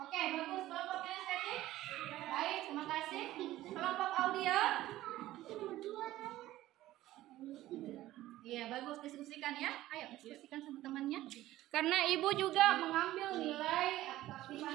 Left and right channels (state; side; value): quieter; left; 15.4 dB